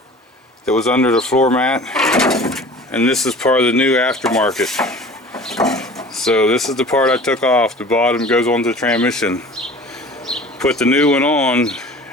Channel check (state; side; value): normal; both; correlation 0.42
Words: that was under the floor mat, and this is part of the new aftermarket. So this is the part I took off. The bottom goes onto the transmission. Put the new one on,